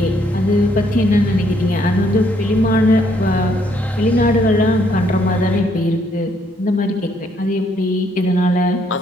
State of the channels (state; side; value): normal; both; correlation 0.70